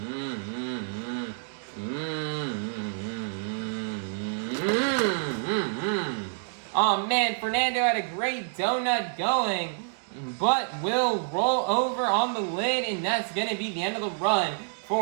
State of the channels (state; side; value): silent; left; 59 dB below the other